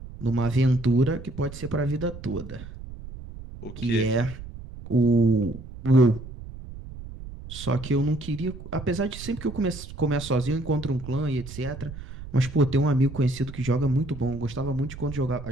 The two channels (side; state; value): right; noise; rumble, 13 dB below the sound